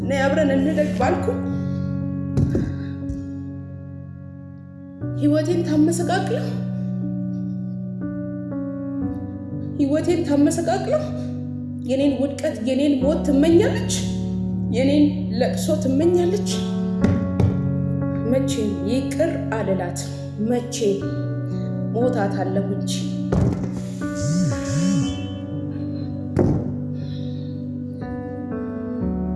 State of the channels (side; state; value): both; identical; correlation 1.00